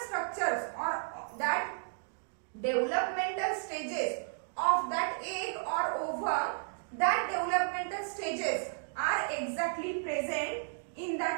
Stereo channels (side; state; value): left; silent; digital silence